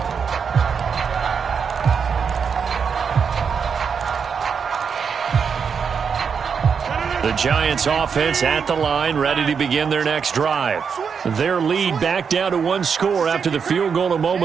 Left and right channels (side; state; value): left; quieter; 6.4 dB